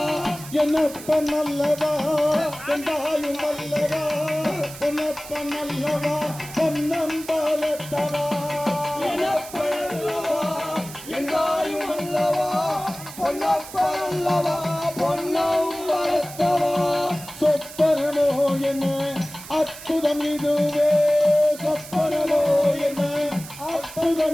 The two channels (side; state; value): right; noise; hiss, 14 dB below the sound